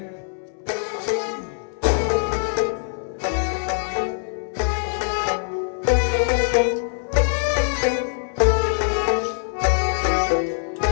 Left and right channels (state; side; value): silent; right; 63 dB below the other